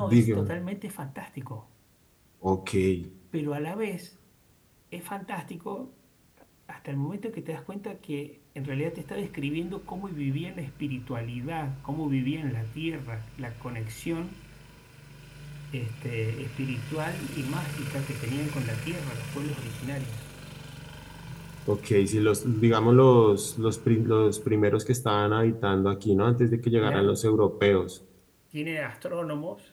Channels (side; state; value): both; identical; correlation 1.00